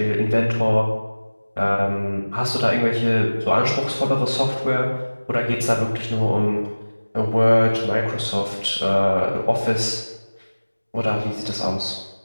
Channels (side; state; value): both; inverted; correlation -1.00